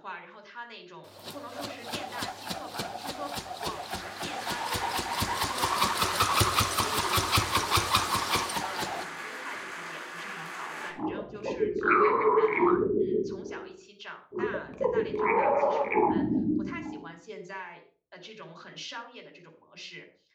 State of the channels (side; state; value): both; identical; correlation 1.00